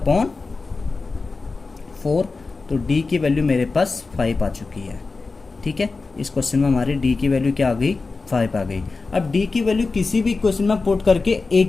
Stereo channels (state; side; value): quieter; right; 4.0 dB